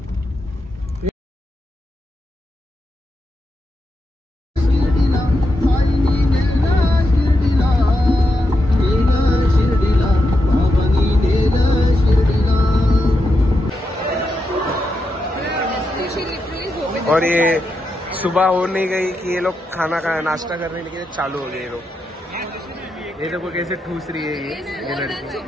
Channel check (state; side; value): normal; both; correlation 0.85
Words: और ये सुबह हो नहीं गई कि ये लोग खाना का नाश्ता करने के लिए चालू हो गए. ये देखो कैसे ठूस रही है ये लड़की.